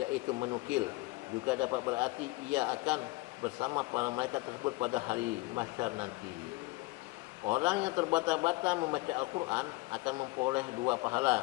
menukil. Juga dapat berarti ia akan bersama para malaikat tersebut pada hari mahsyar nanti. Orang yang terbata-bata membaca Al-Quran akan memperoleh 2 pahala.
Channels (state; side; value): quieter; right; 22.4 dB